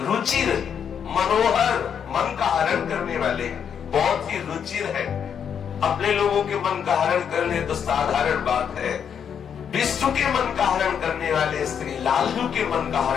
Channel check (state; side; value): quieter; right; 7.8 dB